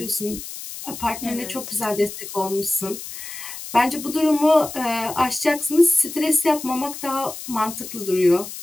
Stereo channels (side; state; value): left; noise; hiss, 11 dB below the sound